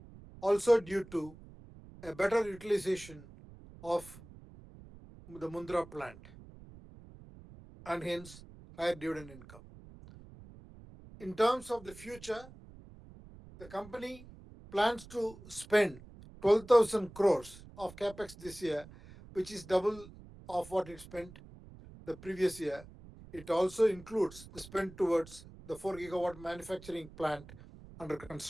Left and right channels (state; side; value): noise; right; rumble, 19 dB below the sound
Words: also due to a better utilization of the Mundra plant and hence higher dividend income. In terms of the future, the company plans to spend 12,000 crores of capex this year, which is double of what it spent the previous year. It also includes the spend towards the 4 gigawatt manufacturing plant under